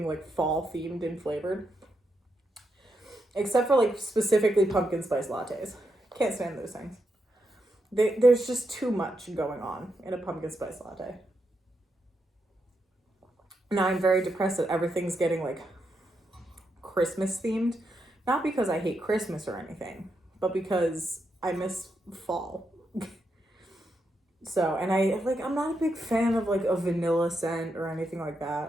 like fall themed and flavored, except for like specifically pumpkin spice lattes. Can't stand those things. There's just too much going on in a pumpkin spice latte. Now I'm very depressed that everything's getting like Christmas themed. Not because I hate Christmas or anything, but because I miss fall. So, and I'm not a big fan of like a vanilla scent or anything like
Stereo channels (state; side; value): normal; both; correlation 0.83